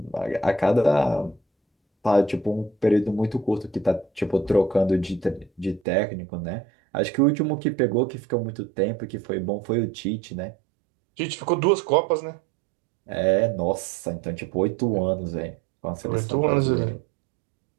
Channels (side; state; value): left; drops out; at 5.8 s